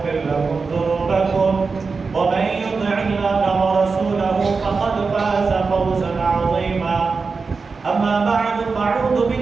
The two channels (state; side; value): quieter; left; 4.6 dB